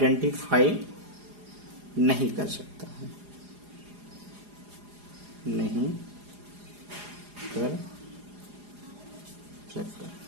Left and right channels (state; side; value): late; left; 4.8 ms